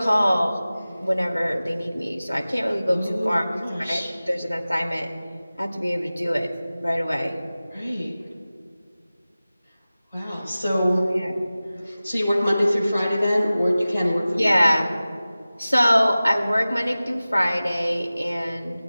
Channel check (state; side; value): inverted; both; correlation -0.97